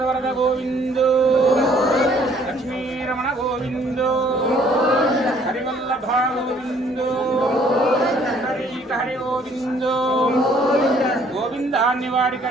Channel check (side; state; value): both; normal; correlation 0.61